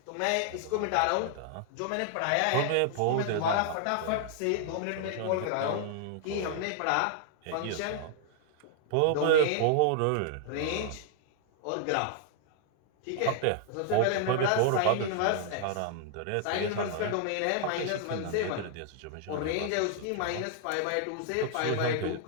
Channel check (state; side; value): different; both; correlation 0.00